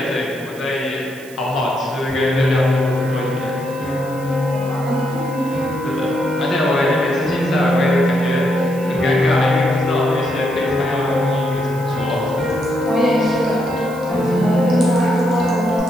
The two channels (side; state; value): right; noise; hiss, 21 dB below the sound